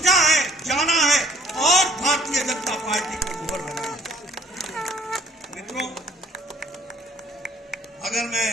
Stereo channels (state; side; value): normal; both; correlation 0.58